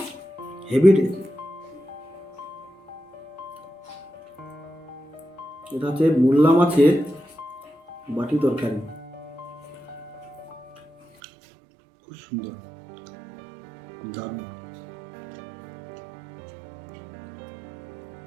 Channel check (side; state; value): left; drops out; at 11.1 s